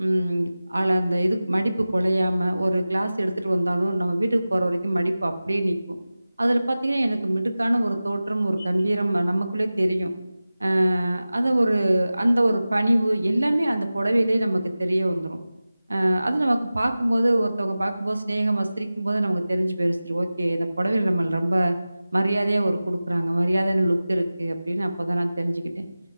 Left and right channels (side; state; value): both; inverted; correlation -0.96